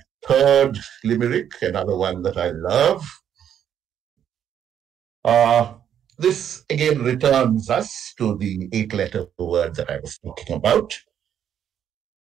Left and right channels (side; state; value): left; quieter; 9.4 dB